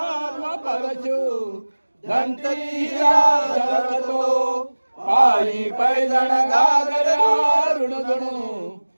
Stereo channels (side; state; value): both; inverted; correlation -1.00